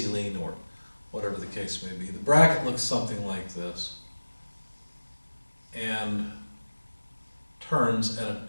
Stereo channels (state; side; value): inverted; both; correlation -1.00